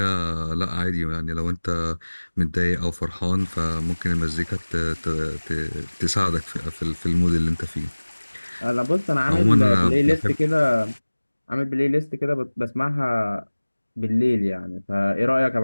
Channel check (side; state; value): both; inverted; correlation -1.00